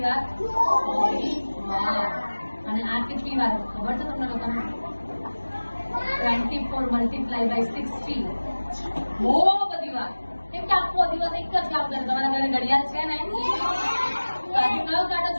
વાર? 24 વાર. અને આ કેટલી વાર ખબર છે તમને લોકોને? 24 મલ્ટીપ્લાય બાય 60. બહુ બધી વાર. કેમ કે આખો દિવસ એક જ કામ કરે. તમારા ઘરે ઘડિયાળ છે ને? કયો કાંટો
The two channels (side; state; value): both; inverted; correlation -1.00